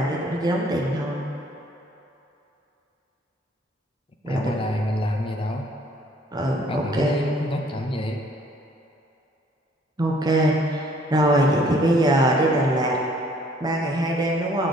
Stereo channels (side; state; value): both; normal; correlation 0.60